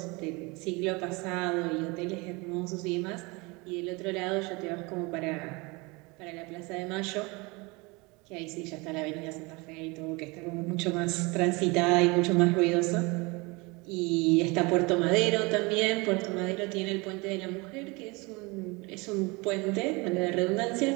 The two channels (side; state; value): left; quieter; 26.3 dB